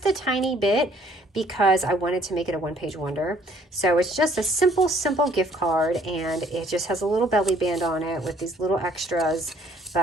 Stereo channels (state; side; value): normal; both; correlation 0.61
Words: a tiny bit because I wanted to make it a one-page wonder. So it's just a simple gift card, and it just has a little belly band on it with these little extras.